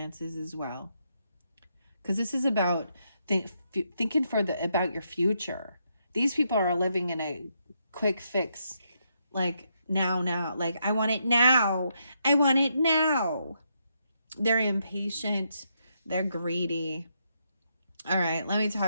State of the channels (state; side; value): inverted; both; correlation -0.79